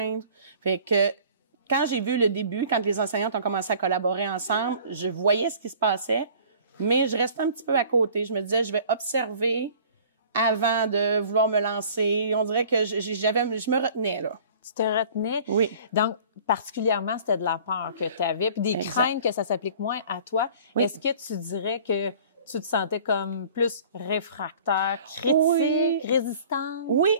Fait que, quand j'ai vu le début, quand les enseignantes ont commencé à collaborer ensemble, je voyais ce qui se passait, mais je restais un petit peu à côté. Je me disais, je vais observer avant de vouloir me lancer. On dirait que je me retenais, là. Tu te retenais? Oui. Donc, particulièrement, c'était de la peur que tu avais, puis des craintes que ça s'applique moins à toi. Oui. Est-ce que tu dirais que tu te sentais comme plus réfractaire, critique, résistante? Oui,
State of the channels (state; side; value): inverted; both; correlation -0.49